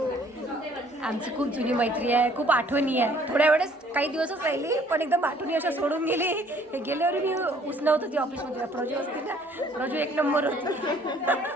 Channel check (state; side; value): normal; both; correlation 0.59